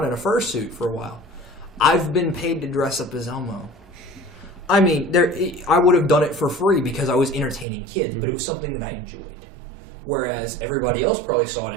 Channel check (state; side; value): drops out; left; at 7.7 s